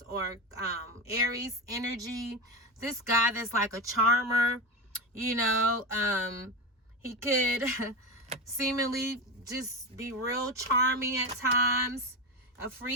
or Aries energy. This guy that's like a charmer, you know, he could seemingly just be real charming at times. A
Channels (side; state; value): both; normal; correlation 0.19